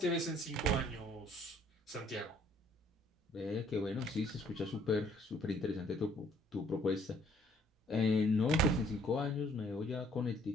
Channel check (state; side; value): normal; both; correlation 0.61